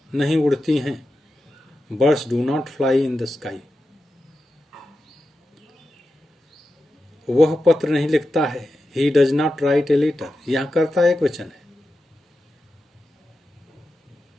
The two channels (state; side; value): normal; both; correlation 0.90